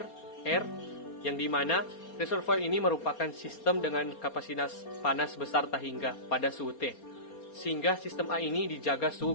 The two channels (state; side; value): late; right; 4.3 ms